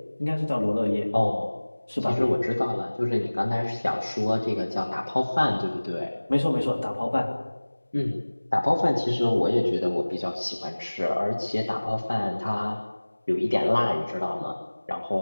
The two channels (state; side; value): inverted; both; correlation -1.00